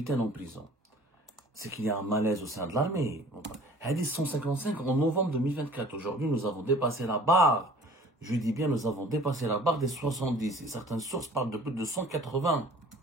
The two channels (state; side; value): normal; both; correlation 0.49